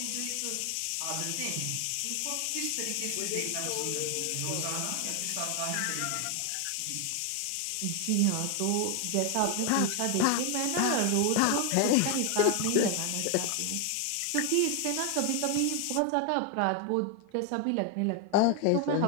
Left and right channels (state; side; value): different; both; correlation 0.01